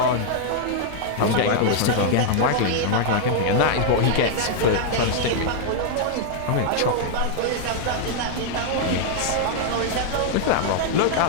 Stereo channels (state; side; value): different; both; correlation 0.00